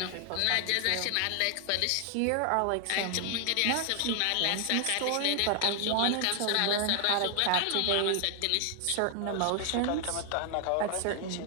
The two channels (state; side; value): different; both; correlation 0.00